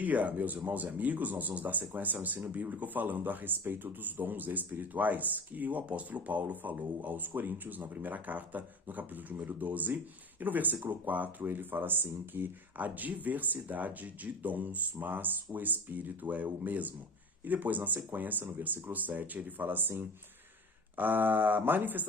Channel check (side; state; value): both; normal; correlation 0.34